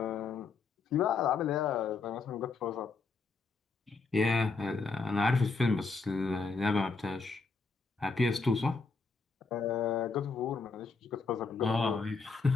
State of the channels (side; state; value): right; quieter; 4.4 dB